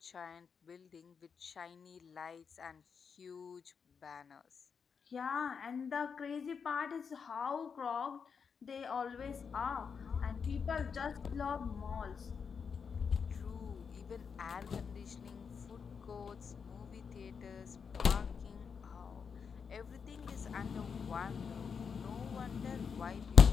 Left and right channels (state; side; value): quieter; right; 6.2 dB